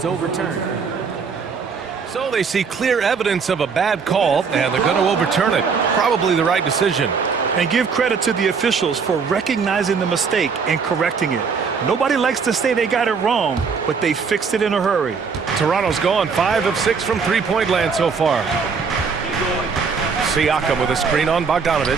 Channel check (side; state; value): left; quieter; 5.6 dB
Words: overturned. So they see clear evidence of a bad call, and they're going to overturn it. Probably the right decision. And give credit to the officials for recognizing the mistake and correcting it. Nobody likes to say they got it wrong, but they fixed it in a hurry. Toronto's gone 5 of 6 from three-point land so far. Siakam with a screen on Bogdanovich.